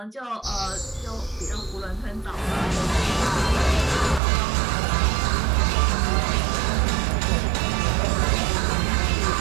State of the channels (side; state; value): left; drops out; at 4.2 s